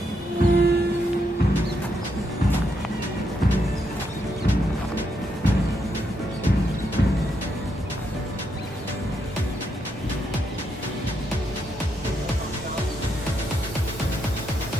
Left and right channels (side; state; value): both; normal; correlation 0.79